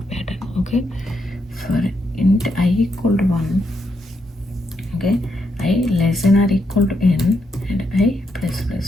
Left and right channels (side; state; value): both; normal; correlation 0.80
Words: pattern. Okay, for int I equal to 1, okay, I less than or equal to n, and I plus